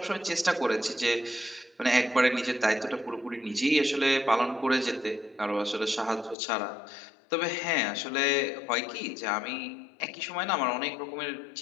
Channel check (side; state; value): right; drops out; at 6.4 s